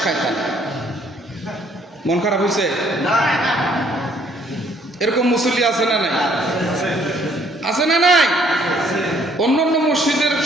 শয়তান। মন খারাপ হয়েছে? এরকম মুসল্লি আছে না নাই? আছে না নাই? অন্য অন্য মসজিদের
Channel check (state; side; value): normal; both; correlation 0.64